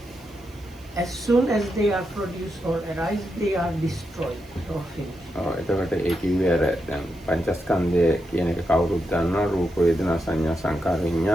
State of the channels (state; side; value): noise; right; hiss, 28 dB below the sound